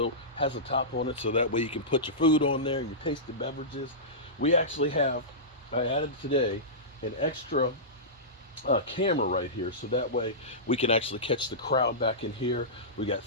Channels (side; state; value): both; normal; correlation -0.17